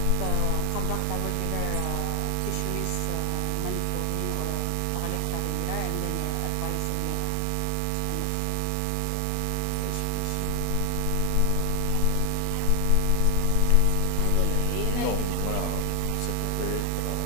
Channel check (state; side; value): different; both; correlation 0.00